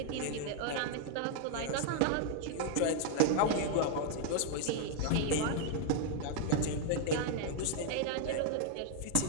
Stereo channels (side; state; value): both; different; correlation 0.00